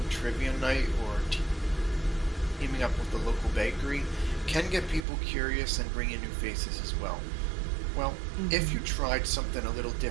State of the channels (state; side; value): drops out; left; at 5.1 s